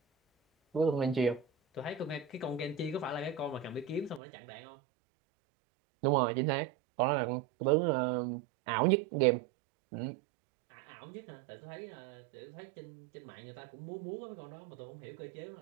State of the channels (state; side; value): drops out; left; at 4.2 s